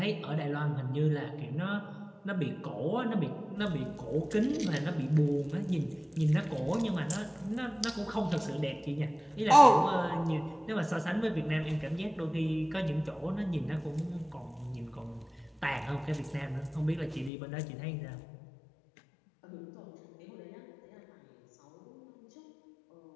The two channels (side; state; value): right; drops out; at 17.3 s